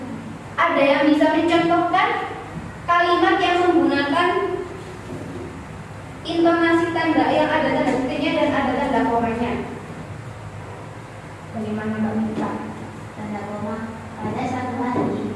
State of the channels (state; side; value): identical; both; correlation 1.00